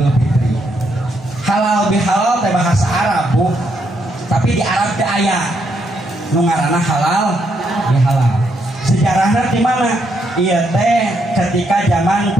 Fitri. Halal bihalal teh bahasa Arab Bu. Tapi di Arab teh aya nu ngaranna halal bihalal. Sejarahnya di mana? Iya teh ketika zaman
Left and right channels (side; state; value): both; normal; correlation 0.77